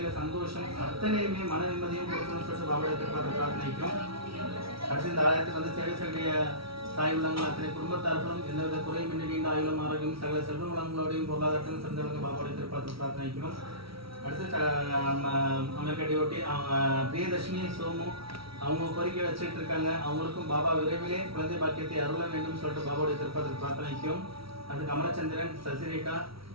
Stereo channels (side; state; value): left; late; 0.75 ms